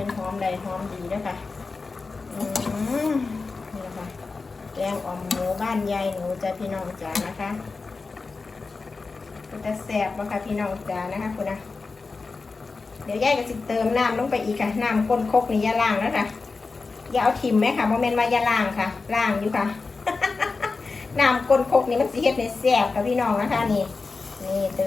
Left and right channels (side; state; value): right; quieter; 4.1 dB